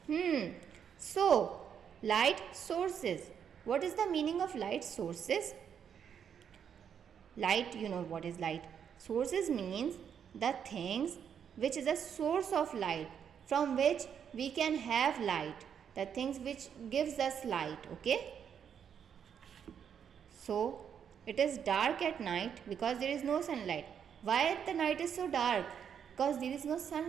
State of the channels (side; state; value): left; quieter; 8.0 dB